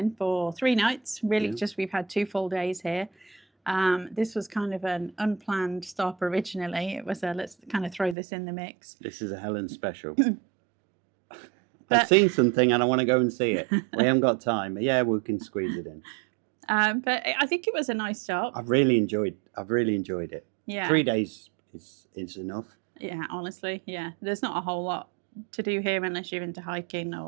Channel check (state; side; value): drops out; left; at 8.2 s